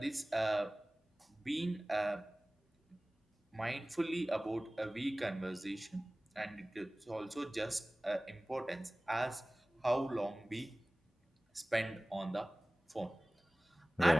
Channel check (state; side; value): normal; both; correlation 0.98